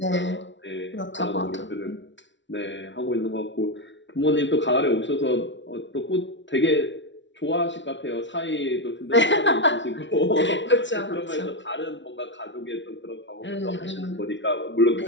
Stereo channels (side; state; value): right; late; 0.54 ms